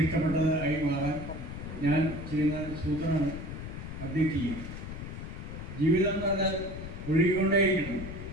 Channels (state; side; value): noise; left; rumble, 8 dB below the sound